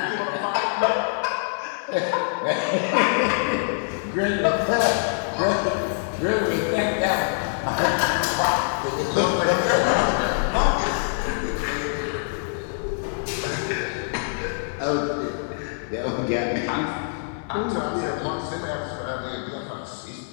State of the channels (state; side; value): silent; right; 62 dB below the other